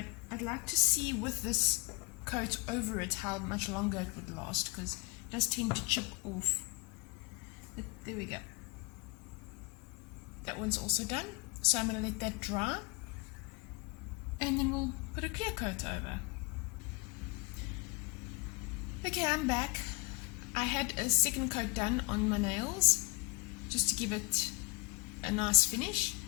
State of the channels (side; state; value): right; quieter; 25.7 dB